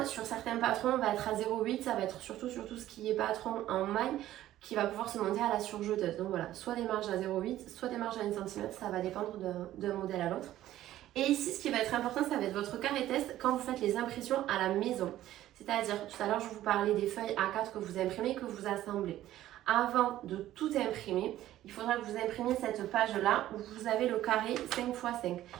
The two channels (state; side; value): quieter; left; 13.7 dB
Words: sur certains patrons, on va être à 0,8, ça va être surtout ce qui est patron en maille qui va pouvoir se monter à la surjeteuse. Donc voilà, soit des marges à 0,8, soit des marges à 1 cm, ça va dépendre d'un modèle à l'autre. Et ici, ce qui va être important, ça va être votre carré test quand vous faites les impressions à la maison. C'est-à-dire, tout à l'heure, je vous parlais des feuilles A4 que vous imprimez, que vous assemblez. Avant de tout imprimer, il faudra que vous imprimiez cette page-là où vous avez le carré 5 x 5.